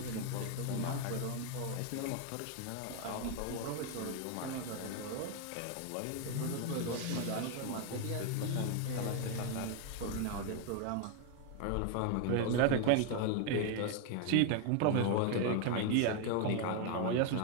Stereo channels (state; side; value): different; both; correlation 0.01